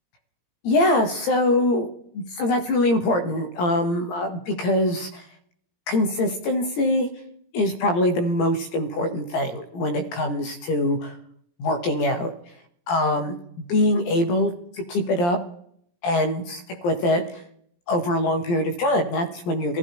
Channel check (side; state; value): right; late; 17 ms